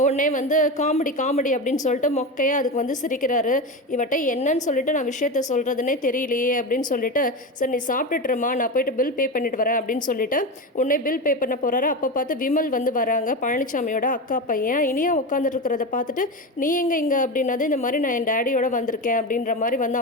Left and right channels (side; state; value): both; normal; correlation 0.20